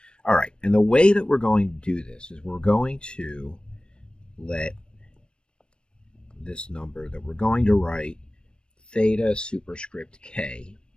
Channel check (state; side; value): late; right; 0.054 ms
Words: All right, and the way that we're going to do this is we're going to let this number that we're going to write theta superscript k,